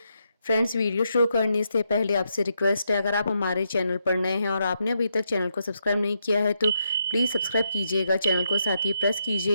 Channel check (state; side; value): inverted; both; correlation -0.81